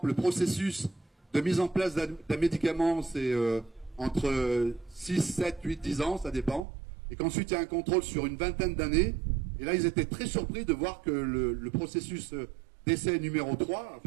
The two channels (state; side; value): drops out; left; at 6.7 s